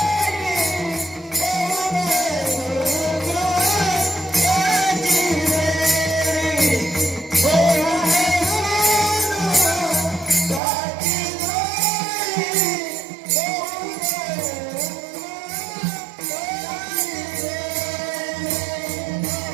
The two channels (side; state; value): left; drops out; at 10.6 s